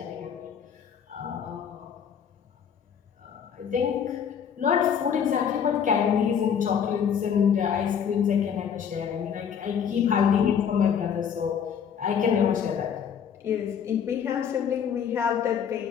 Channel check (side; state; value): right; quieter; 7.8 dB